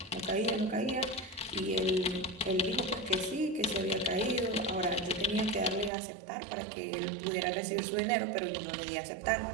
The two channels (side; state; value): left; drops out; at 5.9 s